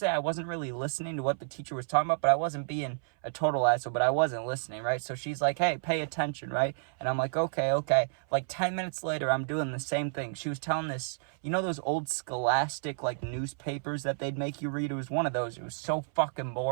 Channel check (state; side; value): silent; left; 57 dB below the other